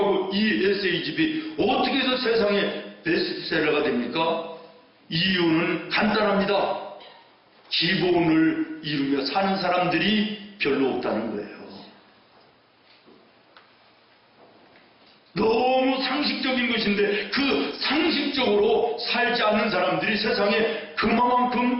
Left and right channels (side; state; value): both; identical; correlation 1.00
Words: 이 에세이집이 어떻게 해서 세상에 베스트셀러가 됩니까? 이유는 간단합니다. 기본을 이루며 사는 사람들이 별로 없다는 거예요. 너무 상식적인 것인데 그 상식적으로 살지 않는 사람들이 세상에